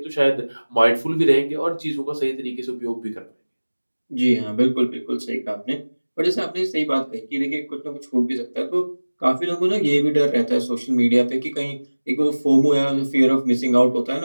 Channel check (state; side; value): inverted; both; correlation -1.00